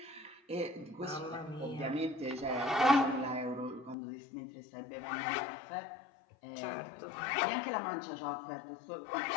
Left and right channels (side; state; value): right; drops out; at 4.0 s